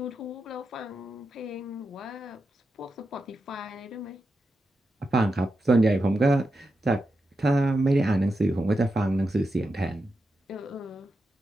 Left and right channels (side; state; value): both; normal; correlation 0.88